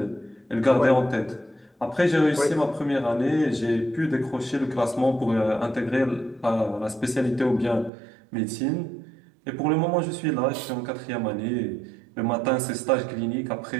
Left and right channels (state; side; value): drops out; left; at 7.9 s